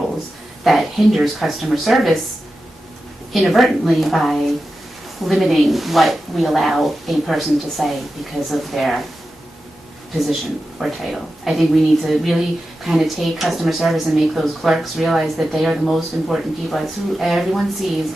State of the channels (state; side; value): normal; both; correlation 0.92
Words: that hinders customer service inadvertently by limiting what we allow a person to say because of their position or title. I think we need to really kind of take customer service and make those clerks realize that they are the most important people. It's who everyone sees